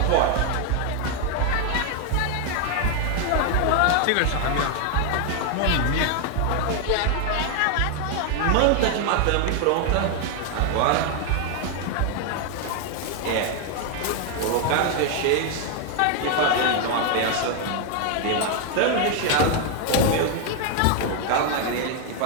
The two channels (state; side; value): different; both; correlation 0.01